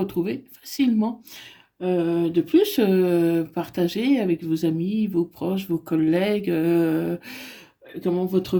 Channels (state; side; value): identical; both; correlation 1.00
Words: facilement. De plus, partagez avec vos amis, vos proches, vos collègues, votre